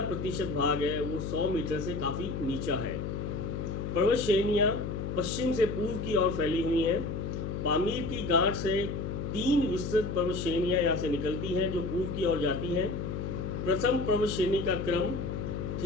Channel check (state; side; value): noise; left; hum, 4 dB below the sound